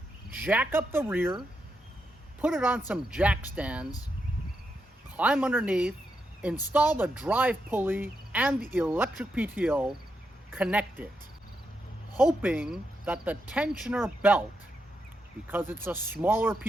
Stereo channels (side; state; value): both; normal; correlation 0.84